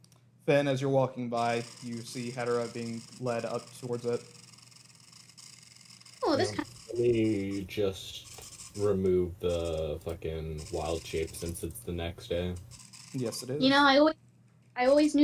Then, as you're walking by, you see Hedera being led up towards it. Oh, this kind. We just remove the fucking wild shape since it's the next day. Yes, it is. You know, I always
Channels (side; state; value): both; identical; correlation 1.00